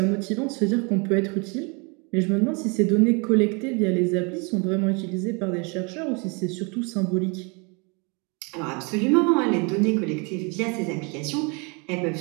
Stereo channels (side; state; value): left; quieter; 31.7 dB